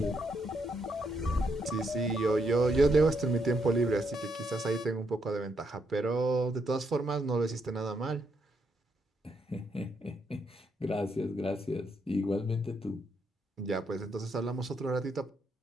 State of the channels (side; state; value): both; normal; correlation 0.77